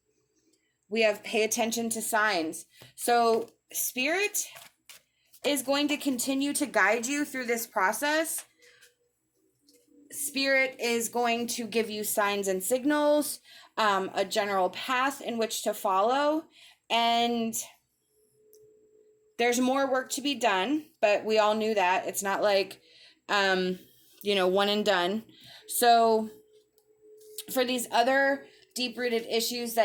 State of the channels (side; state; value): both; identical; correlation 1.00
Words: We have pay attention to signs. So Spirit is going to continue to guide you through this process. Spirit is going to give you signs and signals, a general path in which to follow. And there's more work to be done, but we all knew that. It's not like, one and done. So for these other deep-rooted issues